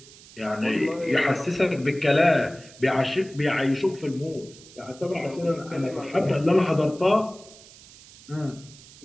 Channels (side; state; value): right; noise; hiss, 21 dB below the sound